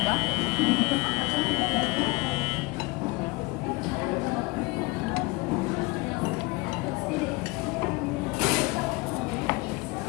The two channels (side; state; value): right; quieter; 24.2 dB